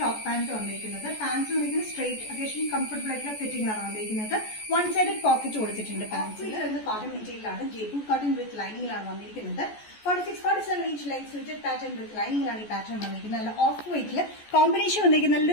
പാന്റ് വന്നിരിക്കുന്നത്. പാൻസ് വന്നിരിക്കുന്നത് സ്ട്രേറ്റ് അത്യാവശ്യം കംഫർട്ടബിൾ ആയിട്ടുള്ള ഫിറ്റിംഗിലാണ് വന്നിരിക്കുന്നത്. വൺ സൈഡഡ് പോക്കറ്റ് കൊടുത്തിട്ടുണ്ട്. പാൻസിൽ കോട്ടൺ മെറ്റീരിയലാണ്. ജയ്പൂർ കോട്ടൺ വിത്ത് ലൈനിങ്ങിലാണ് വന്നിരിക്കുന്നത്. 46-47 inch length slitted pattern with ലൈനിങ്ങിലാണ് ഈ പാറ്റേൺ വന്നിരിക്കുന്നത്. നല്ല ഓഫ് വൈറ്റില് കോമ്പിനേഷൻ വന്നിരിക്കുന്നത്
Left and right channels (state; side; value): late; right; 14 ms